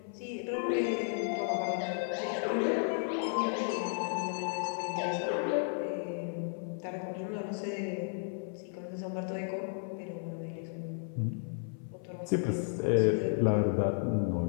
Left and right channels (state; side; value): silent; right; 55 dB below the other